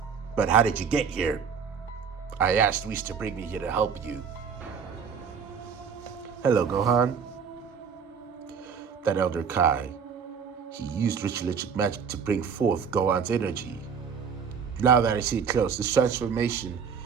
But how did you get here? I asked Whis to bring me here to help you. Hello, Gohan. That Elder Kai. He used ritualistic magic to bring forth Gohan's energy. Now that I see it close, this transformation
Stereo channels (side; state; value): left; quieter; 6.5 dB